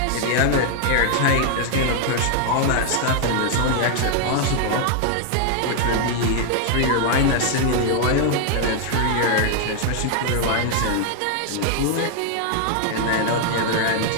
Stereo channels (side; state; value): both; different; correlation 0.00